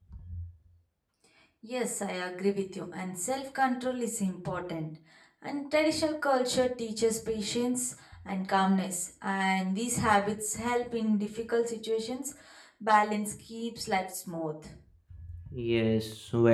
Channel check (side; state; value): both; identical; correlation 1.00